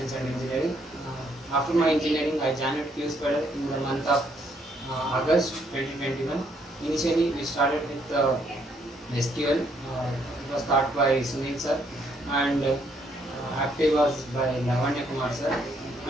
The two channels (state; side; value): normal; both; correlation 0.70